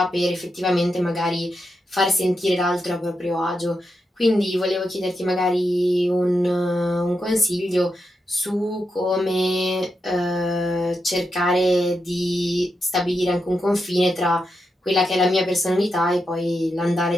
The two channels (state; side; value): normal; both; correlation 0.86